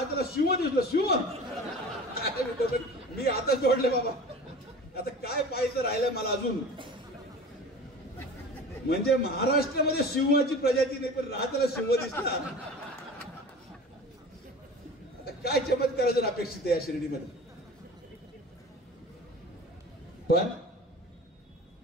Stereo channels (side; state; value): both; normal; correlation 0.38